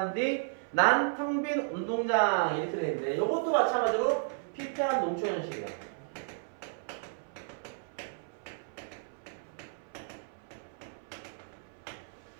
뒤 난 텅 빈 운동장 이렇게 되는데 이것도 마찬가지로 피폐한 농촌 현실이야.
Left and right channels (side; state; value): left; silent; 56 dB below the other